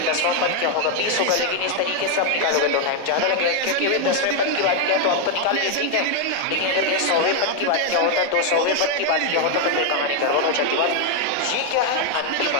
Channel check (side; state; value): both; different; correlation 0.01